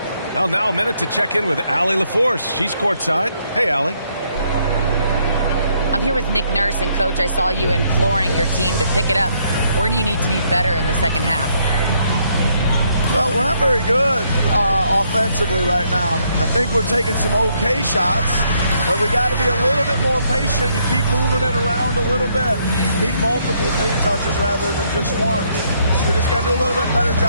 Well, now a minute to check in with Allie LaForce. She's courtside. Hey, Allie. I'm here with Nick Nurse, and Coach, I saw you imploring your team to pick it up. Where do you need to be better in the second half? Well, we're not very good offensively right now. I think we're taking some okay shots, but we got to be a little bit more patient and keep moving it around a little bit. Need multiple paint touches rather than just one. So we just got to do a little bit better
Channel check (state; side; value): inverted; both; correlation -0.71